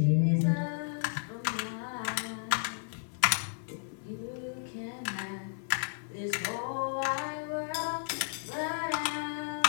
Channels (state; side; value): silent; right; digital silence